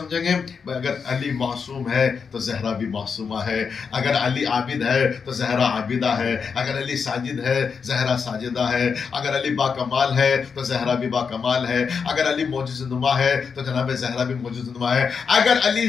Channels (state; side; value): quieter; right; 5.9 dB